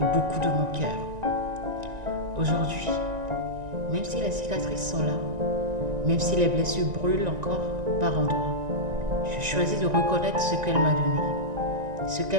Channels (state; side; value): late; left; 1.9 ms